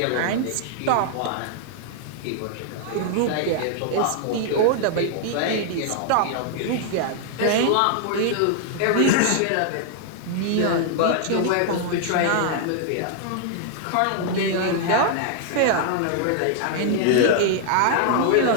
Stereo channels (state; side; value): different; both; correlation -0.01